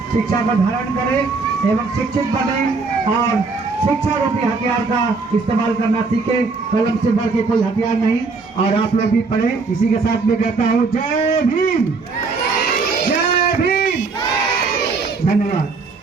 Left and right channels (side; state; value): left; quieter; 4.3 dB